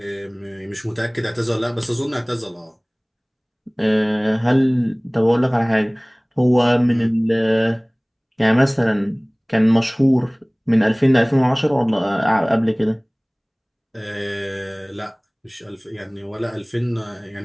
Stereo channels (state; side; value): identical; both; correlation 1.00